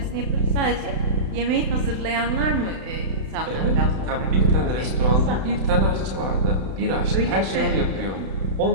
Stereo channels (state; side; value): late; left; 31 ms